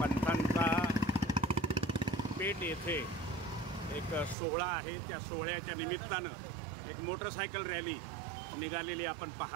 पेठ येथे एक सोहळा आहे। त्या सोहळ्याच्या निमित्तानं एक मोटरसायकल रॅली निघालेली आपण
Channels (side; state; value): left; drops out; at 4.4 s